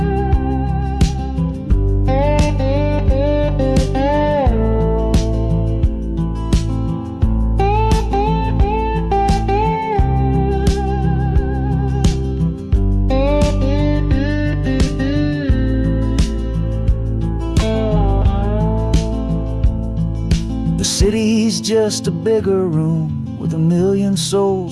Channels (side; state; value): both; identical; correlation 1.00